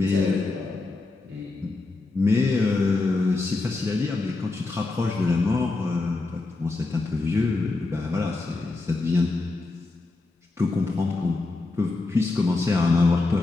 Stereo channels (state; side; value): quieter; right; 3.4 dB